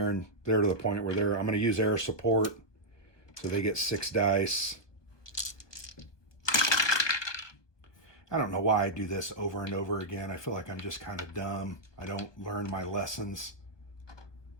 to the point where I'm going to use air support. So they get 6 dice. I don't know why I do this over and over again. I feel like I'm just kind of dumb. I don't learn my lessons.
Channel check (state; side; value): late; right; 1.4 ms